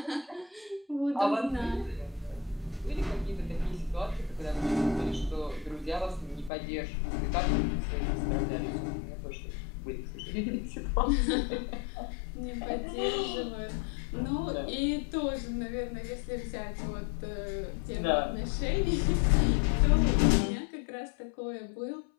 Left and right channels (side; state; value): right; drops out; at 6.5 s